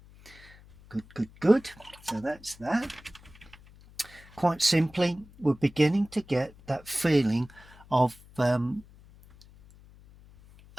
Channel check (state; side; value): noise; left; hum, 23 dB below the sound